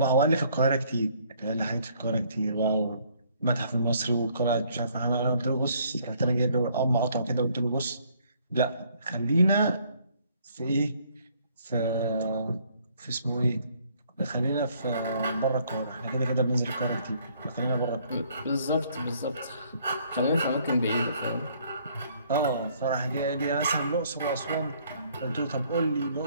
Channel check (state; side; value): inverted; both; correlation -0.64